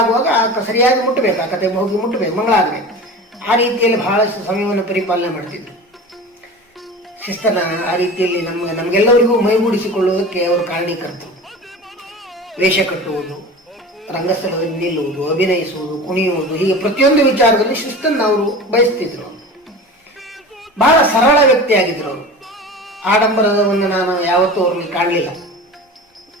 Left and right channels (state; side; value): normal; both; correlation 0.34